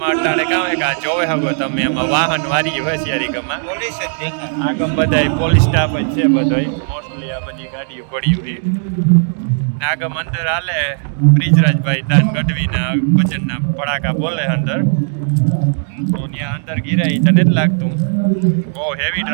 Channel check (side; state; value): left; silent; digital silence